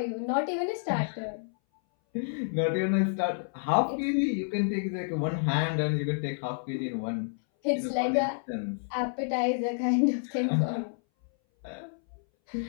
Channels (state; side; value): silent; right; 58 dB below the other